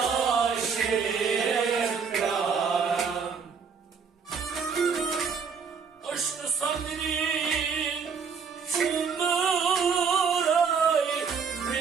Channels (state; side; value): quieter; left; 5.9 dB